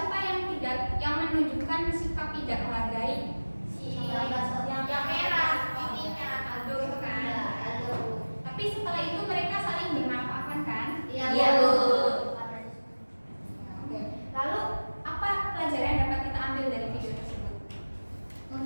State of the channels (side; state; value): both; inverted; correlation -1.00